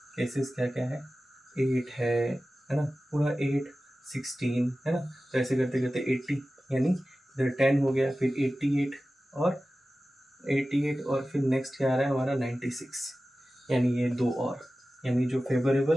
केसेस क्या क्या है, 8 है ना, पूरा 8, 16 है ना, तो ऐसे करते करते 80, यानी इधर 10 हो गया, फिर 88 और 88, और फिर नेक्स्ट क्या आ रहा है हमारा 96, यानी ये 2 और, यानी जो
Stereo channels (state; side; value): normal; both; correlation 0.95